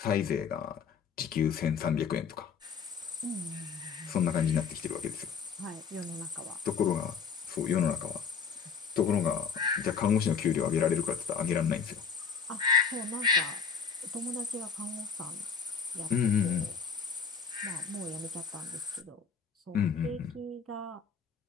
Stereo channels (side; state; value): right; quieter; 6.3 dB